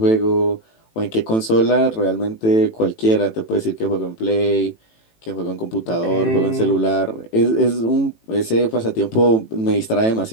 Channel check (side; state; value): right; late; 18 ms